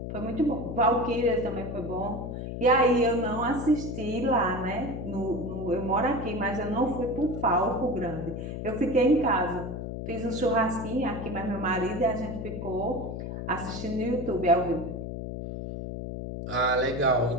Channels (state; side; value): noise; left; hum, 6 dB below the sound